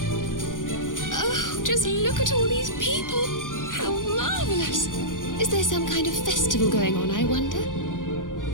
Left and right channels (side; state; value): right; late; 0.88 ms